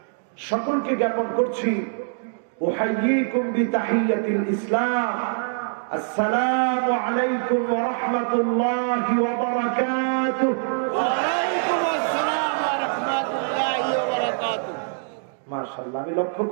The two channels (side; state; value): left; silent; digital silence